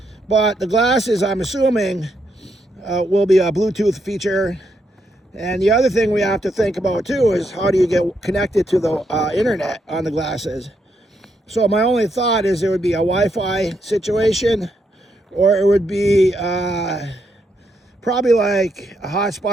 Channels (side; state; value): both; normal; correlation 0.78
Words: But the glasses, I'm assuming, will be a Bluetooth feature. And the other thing we have to think about too is how do you get connected to the internet on the glasses. So my only thought is there would be a Wi-Fi situation, or it would be probably like a